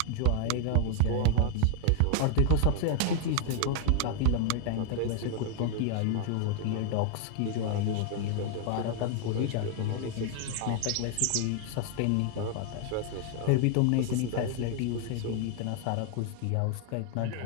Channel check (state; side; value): different; both; correlation 0.00